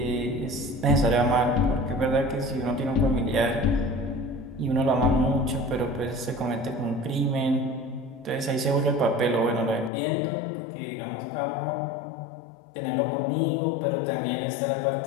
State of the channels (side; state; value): right; drops out; at 9.9 s